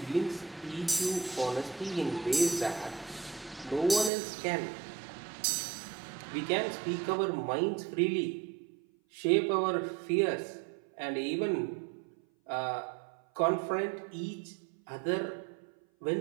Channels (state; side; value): drops out; left; at 4.1 s